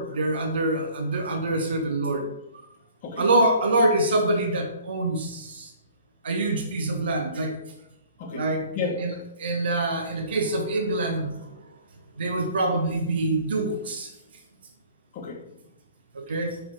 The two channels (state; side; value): inverted; both; correlation -0.55